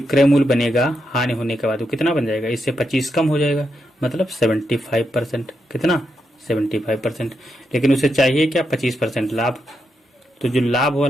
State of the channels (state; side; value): normal; both; correlation 0.83